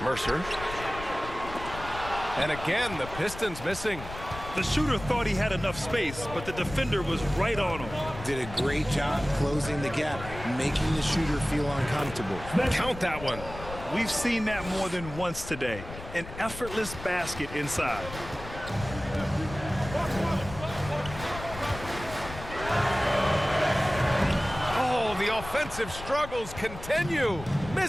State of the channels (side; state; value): left; noise; rumble, 12 dB below the sound